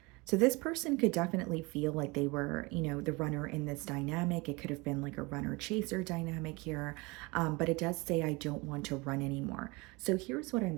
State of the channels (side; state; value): left; quieter; 25.5 dB